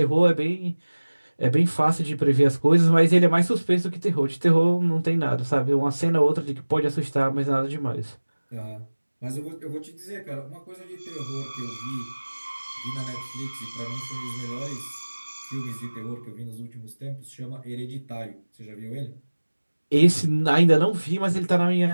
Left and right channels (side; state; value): both; inverted; correlation -1.00